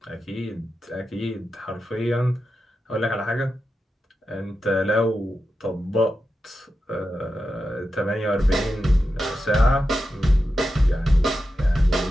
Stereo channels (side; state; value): both; normal; correlation 0.90